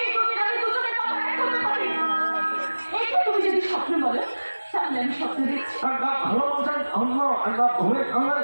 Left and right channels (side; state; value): both; inverted; correlation -1.00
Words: তুমি যদি স্বপ্ন বলো তাহলে আমি স্বপ্ন দেখছি।